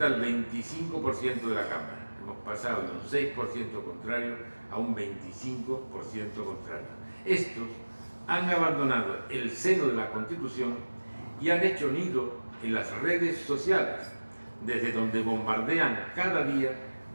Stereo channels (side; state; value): both; inverted; correlation -1.00